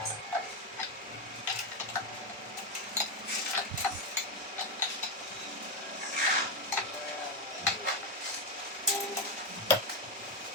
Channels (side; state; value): both; normal; correlation 0.09